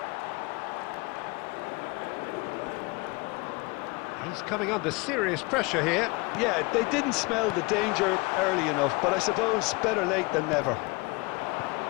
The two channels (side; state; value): right; quieter; 25.8 dB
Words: He's coming under serious pressure here. Yeah, they didn't smell the danger early enough, but I suppose better late than never.